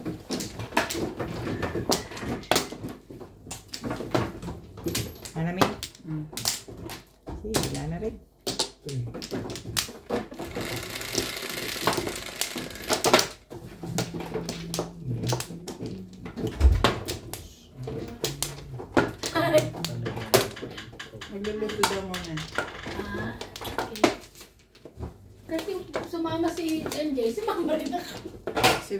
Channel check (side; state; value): both; identical; correlation 1.00